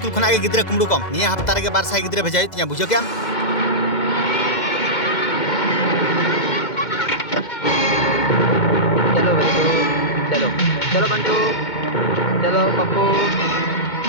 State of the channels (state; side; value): late; right; 2.0 ms